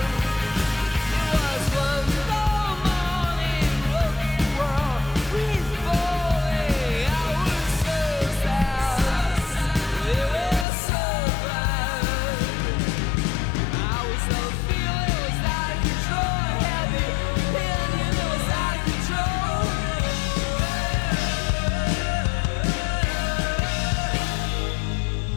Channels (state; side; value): drops out; right; at 10.7 s